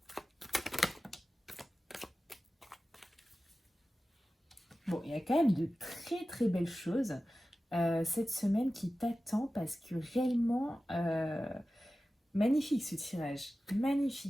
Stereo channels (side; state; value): both; normal; correlation 0.95